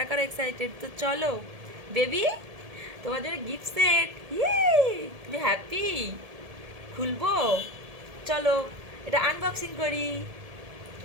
কারা এক্সাইটেড, তো চলো বেবি তোমার জন্য গিফট সেট। ইয়ে, তুমি হ্যাপি? খুলবো, চলো এটা আনবক্সিং করি।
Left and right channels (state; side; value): late; left; 1.7 ms